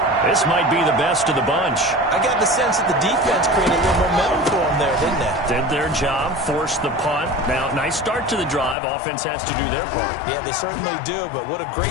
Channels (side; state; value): right; drops out; at 8.8 s